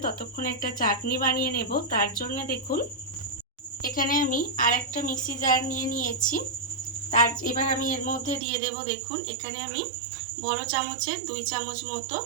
ততক্ষণ একটা চাটনি বানিয়ে নেব। তার জন্য দেখুন এখানে আমি আরেকটা মিক্সি জার নিয়ে নিয়েছি। এবার আমি এর মধ্যে দিয়ে দেব দেখুন এখানে আমি বড় চামচের 2 চামচ মতো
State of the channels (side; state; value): left; drops out; at 8.4 s